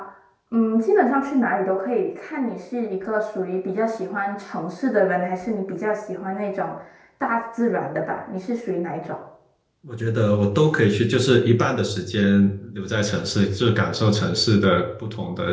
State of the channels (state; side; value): identical; both; correlation 1.00